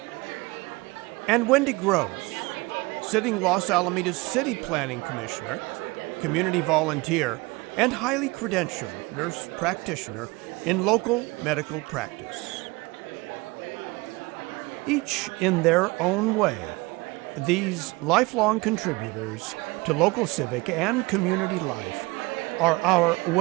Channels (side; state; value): left; quieter; 23.9 dB